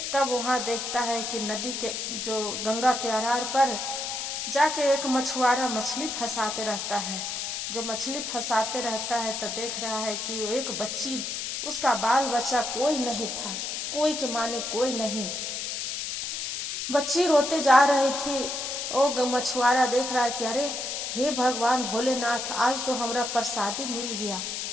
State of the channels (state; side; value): noise; left; hiss, 4 dB below the sound